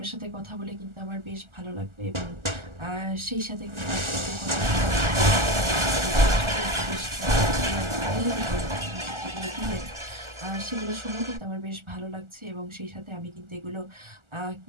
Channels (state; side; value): late; left; 1.4 ms